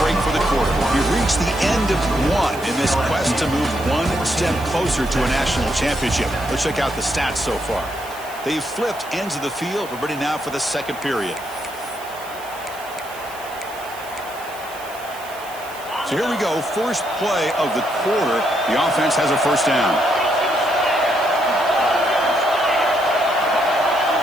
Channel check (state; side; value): noise; right; hiss, 18 dB below the sound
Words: break for the quarter. We've reached the end of one in this quest to move one step closer to a national championship. Let's check out the stats so far. They've flipped ends of the field. We're ready now for the second period. So here we go, first play of the quarter. The offense has a first down.